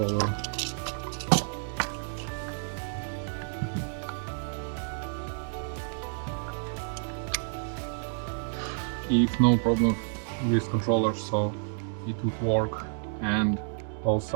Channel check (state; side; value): silent; left; digital silence